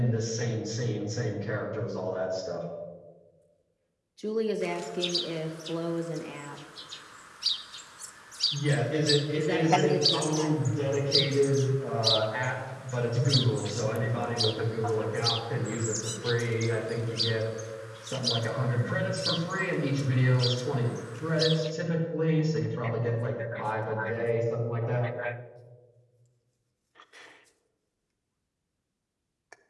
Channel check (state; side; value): identical; both; correlation 1.00